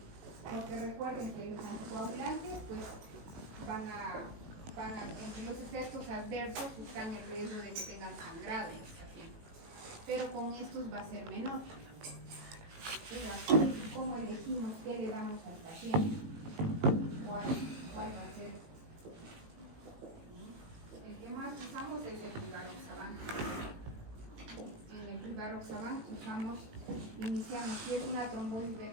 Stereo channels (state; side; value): late; left; 18 ms